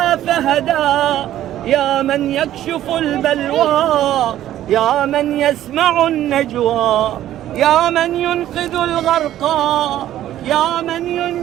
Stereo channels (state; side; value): quieter; left; 12.7 dB